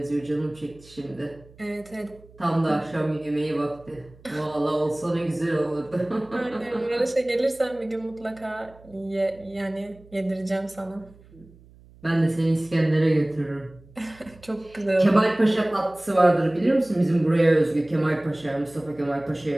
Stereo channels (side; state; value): right; noise; hum, 25 dB below the sound